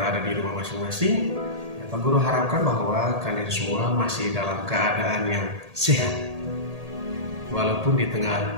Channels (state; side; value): late; left; 1.8 ms